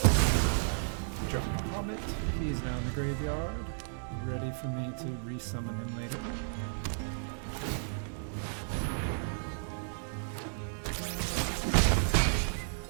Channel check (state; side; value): silent; left; digital silence